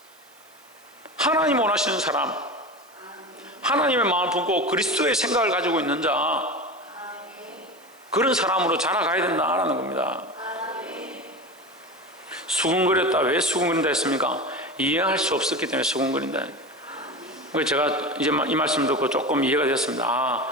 하나님 원하시는 사람, 하나님의 마음을 품고 그리스도의 생각을 가지고 있는 자, 그런 사람으로 자라가야 된다라는 겁니다. 수군거렸다. 왜 수군거린다 했습니까? 이해할 수 없었기 때문에 수군거린다. 그래서 제가 이제 이 말씀 듣고 조금 이해가 됐습니다.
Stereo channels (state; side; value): noise; right; hiss, 28 dB below the sound